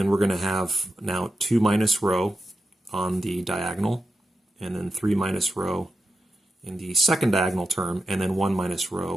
we're gonna have now 2 minus rho on the diagonal, and then 3 minus rho in the second diagonal term, and then 1 minus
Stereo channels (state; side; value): normal; both; correlation 0.88